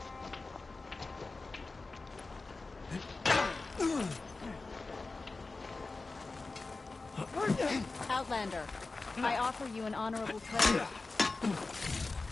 Outlander, I offer you an honorable trade.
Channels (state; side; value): quieter; right; 3.6 dB